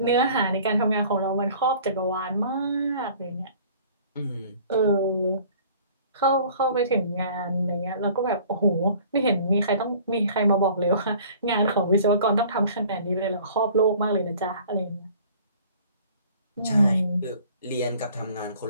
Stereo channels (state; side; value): inverted; both; correlation -0.50